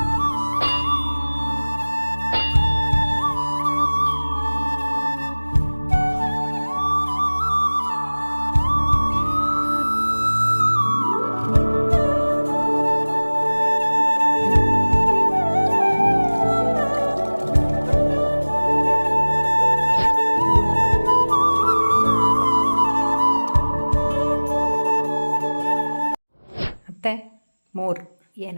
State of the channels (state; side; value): inverted; both; correlation -1.00